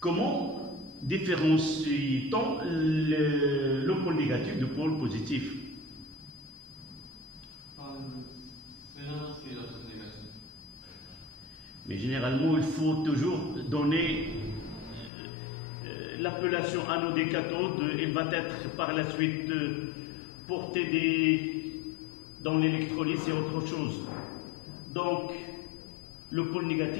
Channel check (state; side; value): drops out; right; at 15.1 s